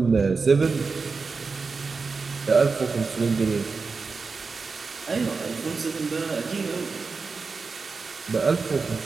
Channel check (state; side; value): quieter; left; 4.6 dB